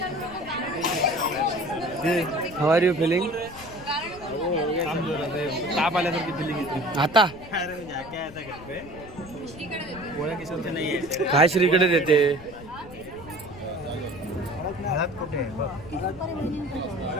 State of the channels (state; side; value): noise; left; rumble, 17 dB below the sound